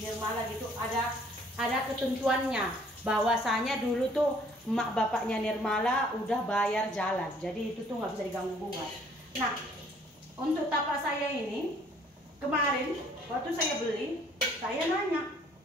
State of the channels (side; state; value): both; normal; correlation 0.59